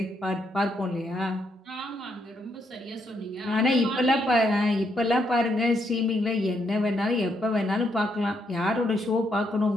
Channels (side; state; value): both; normal; correlation 0.76